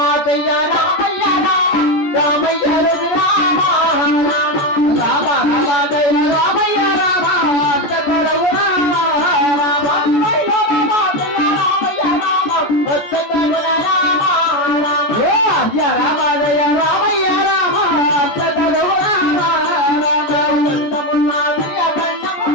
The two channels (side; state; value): right; late; 14 ms